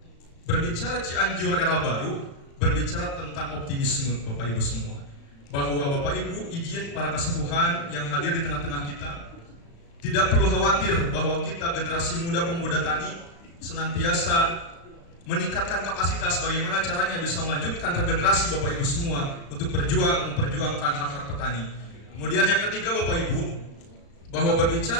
berbicara Cianjur Era Baru, berbicara tentang optimisme Bapak Ibu semua. Bahwa Bapak Ibu, izin para kesepuhan yang hadir di tengah-tengah kita, tidak perlu khawatir bahwa kita generasi muda pemuda tani senantiasa meningkatkan kapasitas bagaimana caranya bisa melanjutkan regenerasi Bapak Ibu semua untuk memperjuangkan hak-hak petani. Kemudian yang ketiga Bapak Ibu, bahwa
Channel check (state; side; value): late; right; 35 ms